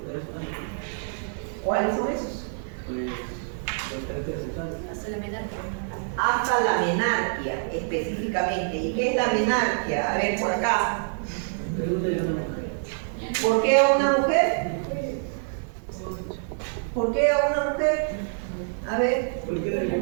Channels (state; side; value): silent; left; digital silence